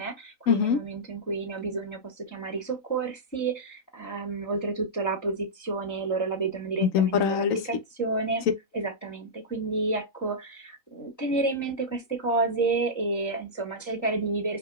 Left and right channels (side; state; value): right; late; 3.9 ms